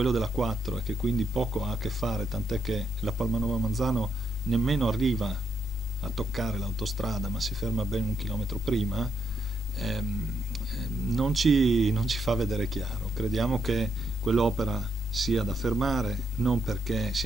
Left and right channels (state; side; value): normal; both; correlation 0.78